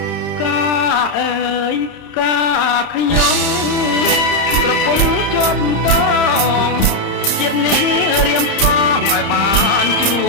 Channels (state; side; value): late; right; 30 ms